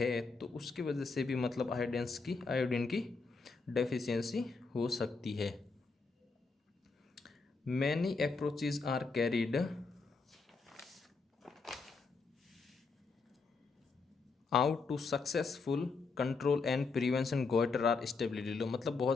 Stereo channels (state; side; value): quieter; right; 4.3 dB